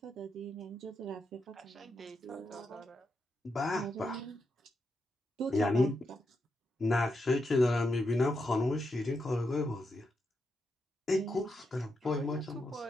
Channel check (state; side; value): normal; both; correlation 0.84